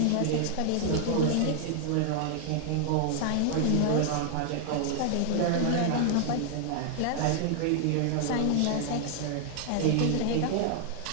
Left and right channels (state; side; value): different; both; correlation 0.00